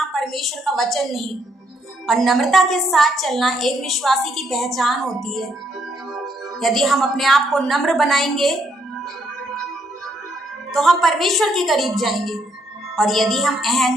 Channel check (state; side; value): normal; both; correlation 0.72